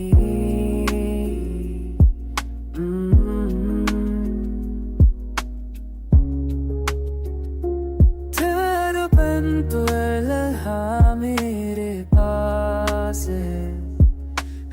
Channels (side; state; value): both; identical; correlation 1.00